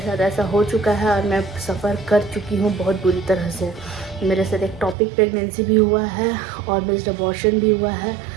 ऐसा हो चुका है और मैं सफ़र कर चुकी हूँ बहुत बुरी तरह से। मेरे साथ एक टॉपिक प्रेगनेंसी भी हुआ है और मिस्ड अबॉर्शन भी हुआ है।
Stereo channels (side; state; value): left; drops out; at 5.0 s